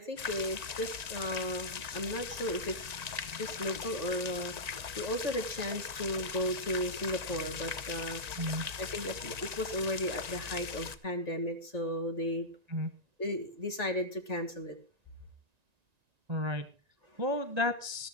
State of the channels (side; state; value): left; late; 1.9 ms